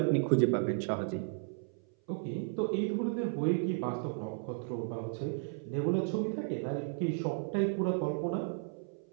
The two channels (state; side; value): silent; left; 55 dB below the other